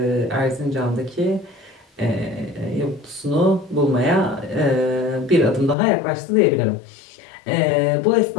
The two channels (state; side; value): drops out; right; at 5.8 s